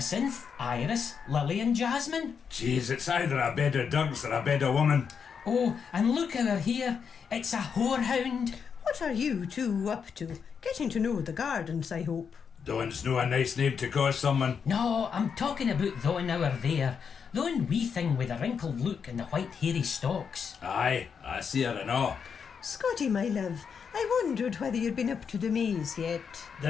Iris, Lily and Jasmine. Jeez, it's either a bed of dogs or a bed of woman. Oh, and look over here. It's a whorehound. What are you two up to? Getting to know the gardens, I hope. Dawn's no a nice name to call someone. No, I'm talking about thon over there. Thon wee thing with the wrinkled look and the white hairy stalks. Aye, I see her and all. Scotty, my love, I wondered whether you'd been up to the maze yet.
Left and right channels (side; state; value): right; quieter; 6.5 dB